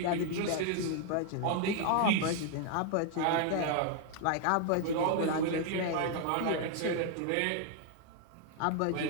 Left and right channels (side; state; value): both; different; correlation 0.00